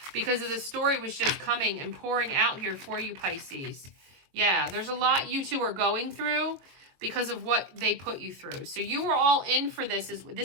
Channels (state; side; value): late; left; 22 ms